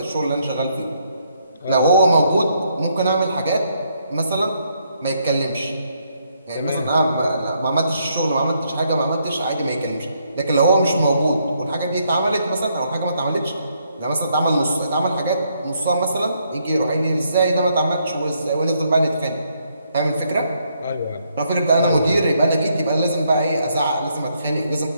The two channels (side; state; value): both; inverted; correlation -0.74